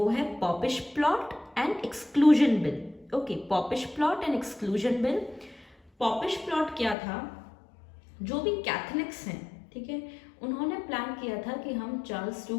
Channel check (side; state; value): right; drops out; at 7.0 s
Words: है poppish plot and exclusion bill. Okay, poppish plot and exclusion bill. Poppish plot क्या था, जो भी कैथलिक्स हैं, ठीक है, उन्होंने प्लान किया था कि हम चार्ल्स